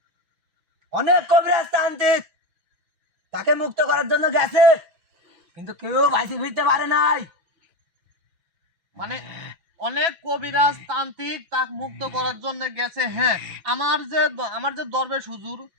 অনেক কবিরাজ তান্ত্রিক তাকে মুক্ত করার জন্য গেছে, কিন্তু কেউ বাইসে ফিরতে পারে নাই। মানে অনেক কবিরাজ তান্ত্রিক তাকে মুক্ত করার জন্য গেছে। হ্যাঁ, আমার যে দরবেশ হুজুর,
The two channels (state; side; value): late; left; 6.0 ms